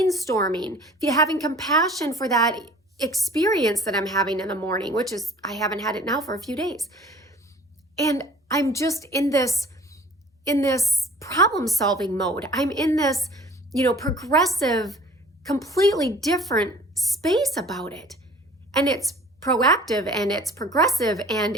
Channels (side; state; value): both; normal; correlation 0.49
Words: having compassion for that experience that I'm having in the morning, which is, I haven't had it now for a few days. And I'm just in this problem solving mode. I'm in this, progressive, completely different space about it. And it's proactive and it's progressive and